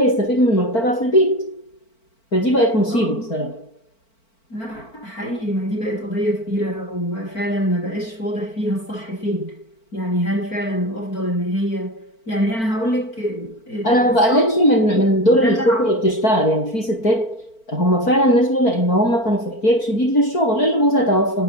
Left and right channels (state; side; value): late; right; 4.5 ms